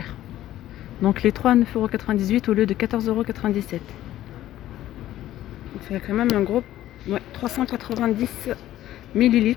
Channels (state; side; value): quieter; right; 13.7 dB